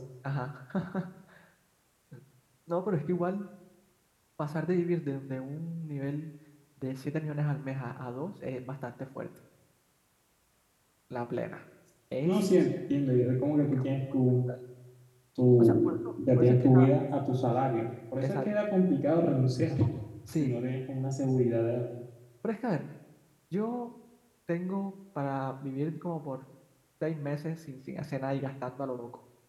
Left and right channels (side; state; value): both; identical; correlation 1.00